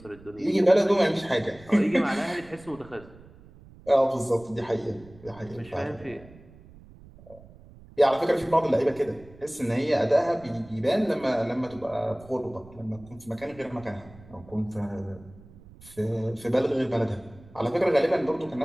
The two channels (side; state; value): right; noise; rumble, 22 dB below the sound